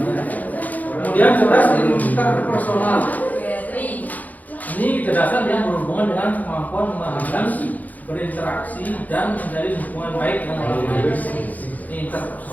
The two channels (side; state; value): right; late; 0.079 ms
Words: Kemudian cerdas interpersonal. Ini kecerdasan yang berhubungan dengan kemampuan memahami, berinteraksi dan menjalin hubungan baik dengan orang lain. Ini